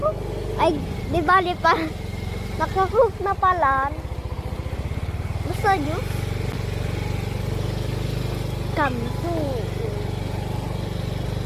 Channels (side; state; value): both; identical; correlation 1.00